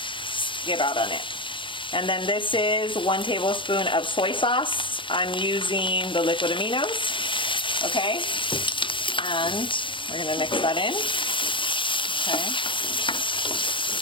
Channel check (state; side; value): late; right; 0.24 ms